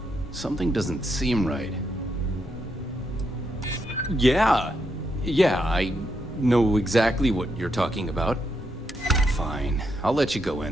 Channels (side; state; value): both; normal; correlation 0.80